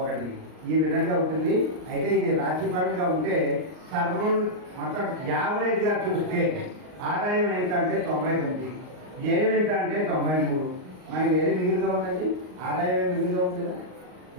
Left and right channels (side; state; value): left; late; 39 ms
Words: 1. ఈ విధంగా ఉంటుంది. అయితే ఇది రాశిపరంగా ఉంటే సర్వం మొత్తం యావరేజ్గా చూస్తే ఆదాయం ఎంత అంటే 99, వ్యయం ఎంత అంటే 93. మనకి ఏది మిగులుగా ఉందండి? ఆదాయమే మిగులుగా ఉంది కదా.